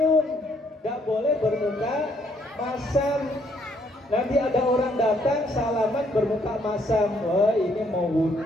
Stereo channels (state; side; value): normal; both; correlation 0.69